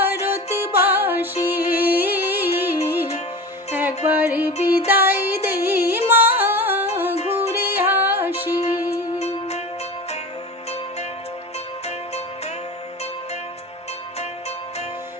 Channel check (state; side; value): normal; both; correlation 0.32